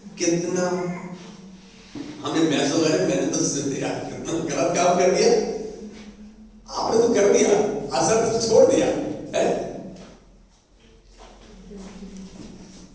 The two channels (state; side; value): identical; both; correlation 1.00